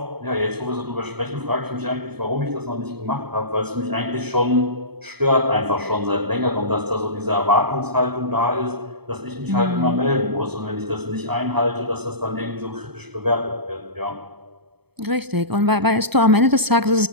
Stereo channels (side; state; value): left; late; 0.98 ms